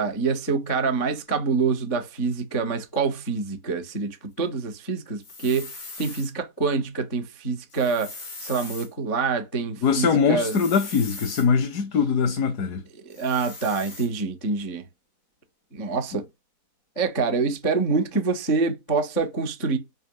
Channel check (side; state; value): right; late; 4.1 ms